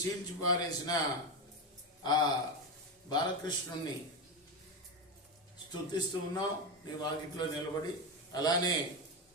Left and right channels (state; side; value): normal; both; correlation 0.14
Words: చీల్చి పారేసిన ఆ బాలకృష్ణుణ్ణి స్తుతిస్తూ ఉన్నాం నీ వాకిట్లో నిలబడి. అలానే